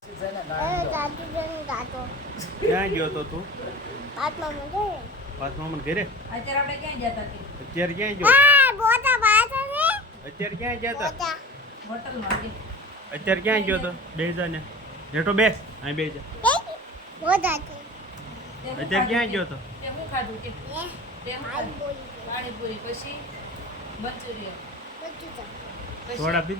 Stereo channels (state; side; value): normal; both; correlation 0.37